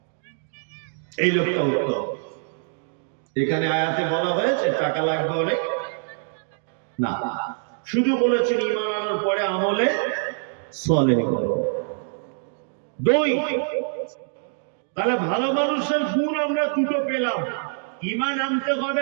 এই লোকটা উত্তম। এখানে আয়াতে বলা হয়েছে টাকা লাগবে অনেক না, শুধু বলেছেন ঈমান আনার পরে আমলে সালেহ করো। দুই, তাহলে ভালো মানুষের গুণ আমরা দুটো পেলাম, ঈমান আনতে হবে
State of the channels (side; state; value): left; silent; digital silence